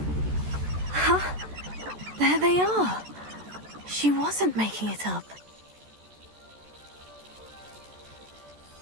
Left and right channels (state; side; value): late; left; 14 ms